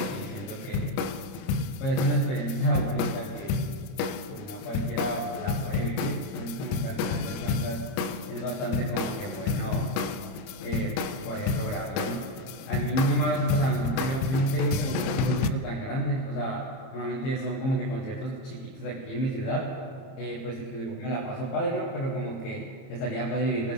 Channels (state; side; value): late; right; 31 ms